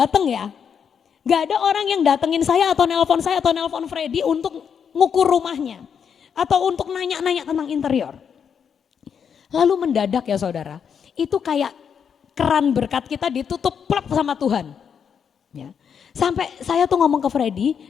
ya. Nggak ada orang yang datengin saya atau nelpon Freddy untuk ngukur rumahnya. Atau untuk nanya-nanya tentang interior. Lalu mendadak ya saudara, itu kayak keran berkat kita ditutup plak sama Tuhan. Ya. Sampai saya tuh ngomong ke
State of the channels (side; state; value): right; quieter; 7.3 dB